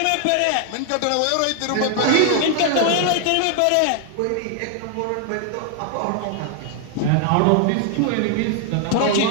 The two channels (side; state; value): both; different; correlation 0.00